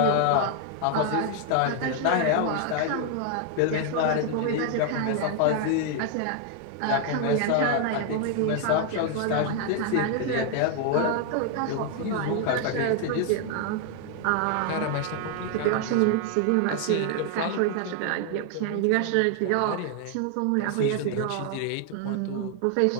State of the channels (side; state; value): both; different; correlation 0.00